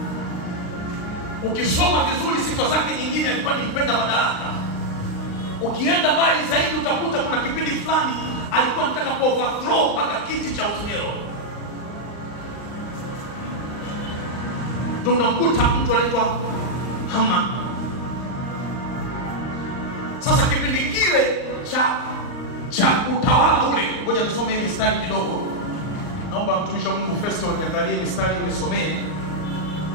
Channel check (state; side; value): late; right; 39 ms